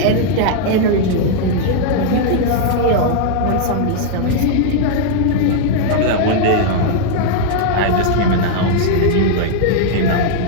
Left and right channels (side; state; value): both; different; correlation -0.01